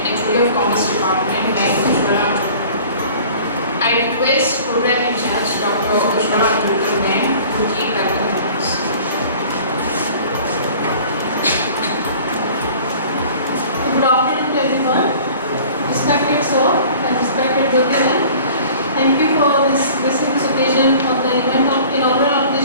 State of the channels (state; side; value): inverted; both; correlation -0.47